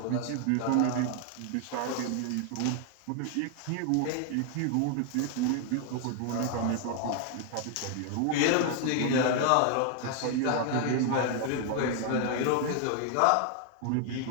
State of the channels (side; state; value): both; different; correlation 0.00